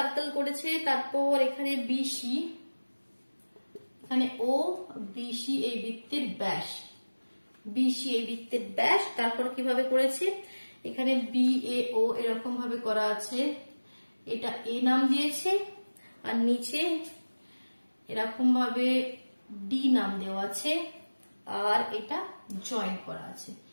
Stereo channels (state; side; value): inverted; both; correlation -1.00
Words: করেছে, তারপর এখানে বিসি, এখানে ও বিসি এই বৃত্তের ব্যাস, বিসি এই বৃত্তের ব্যাস। তারপর কিভাবে করেছে, এখানে বি এ ও এরকম ভাবে করা আছে, এটা এ নাম দিয়েছে আর নিচে এরকম ভাবে ডি নাম দেওয়া আছে, আর এটা জয়েন করা আছে।